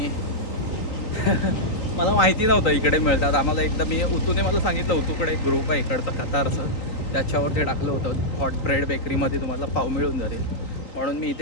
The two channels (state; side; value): late; right; 3.8 ms